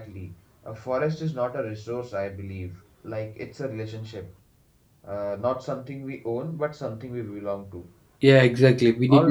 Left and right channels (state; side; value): identical; both; correlation 1.00